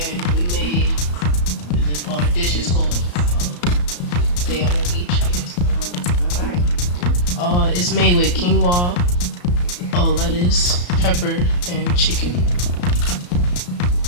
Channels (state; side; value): late; right; 34 ms